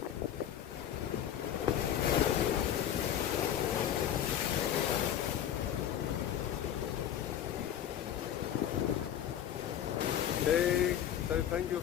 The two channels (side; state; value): right; quieter; 10.3 dB